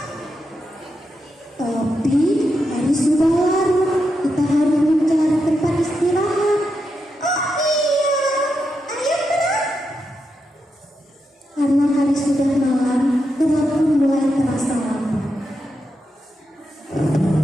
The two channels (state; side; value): normal; both; correlation 0.85